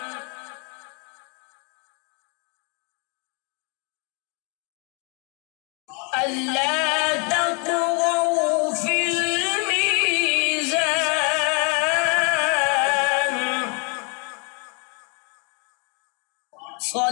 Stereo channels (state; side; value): quieter; right; 34.6 dB